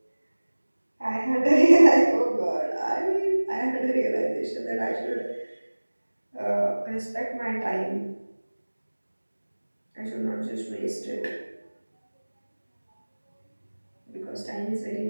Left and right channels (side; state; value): both; inverted; correlation -1.00